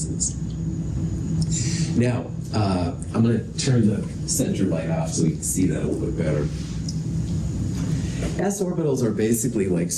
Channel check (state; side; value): identical; both; correlation 1.00